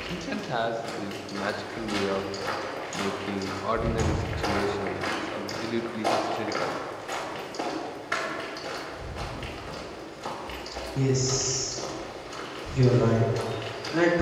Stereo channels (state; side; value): identical; both; correlation 1.00